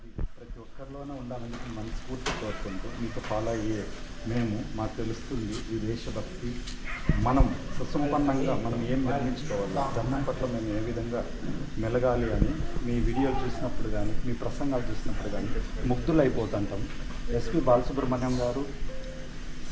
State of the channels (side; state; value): both; identical; correlation 1.00